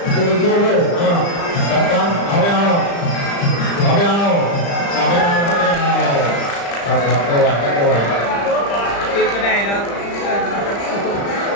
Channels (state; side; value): late; right; 35 ms